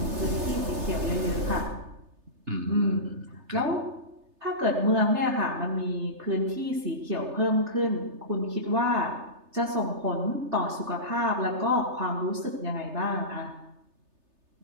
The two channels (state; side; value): late; left; 3.3 ms